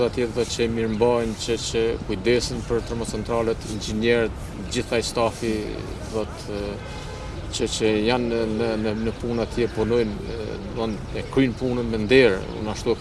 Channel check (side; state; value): both; identical; correlation 1.00